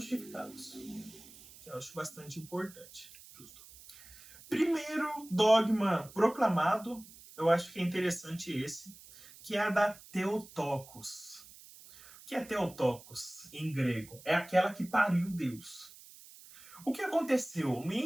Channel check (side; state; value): right; noise; hiss, 20 dB below the sound